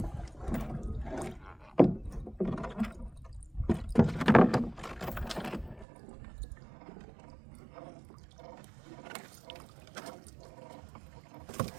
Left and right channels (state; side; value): drops out; left; at 5.9 s